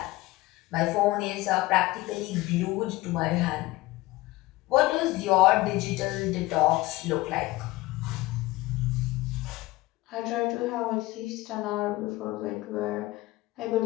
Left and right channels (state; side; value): quieter; right; 19.2 dB